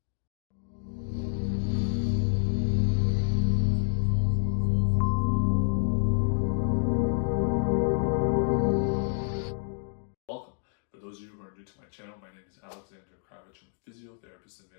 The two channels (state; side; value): silent; right; digital silence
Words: Welcome. For those of you who are new to my channel, my name is Alexander Kravich. I'm a physiotherapist in